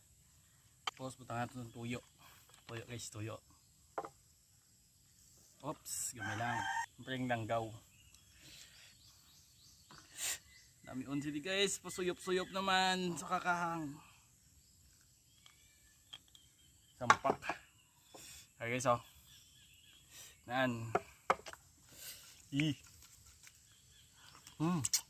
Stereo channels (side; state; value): both; identical; correlation 1.00